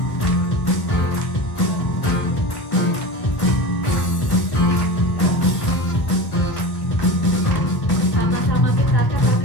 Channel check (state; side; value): late; right; 1.7 ms